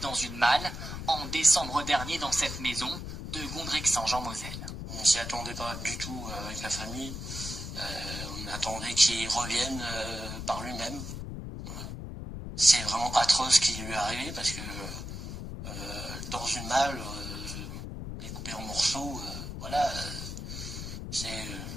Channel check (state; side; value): noise; left; rumble, 7 dB below the sound